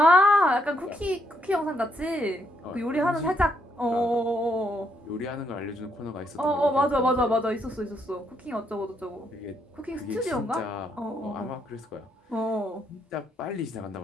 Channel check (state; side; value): normal; both; correlation 0.75